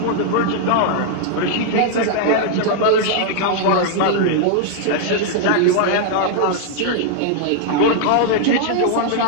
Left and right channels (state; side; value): different; both; correlation -0.01